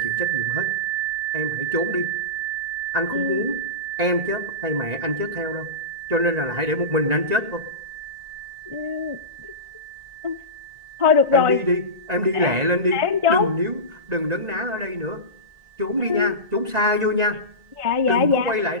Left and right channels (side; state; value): left; late; 1.9 ms